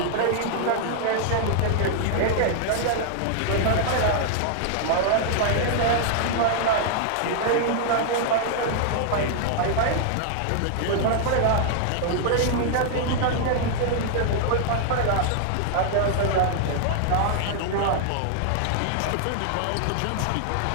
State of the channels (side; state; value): both; different; correlation -0.01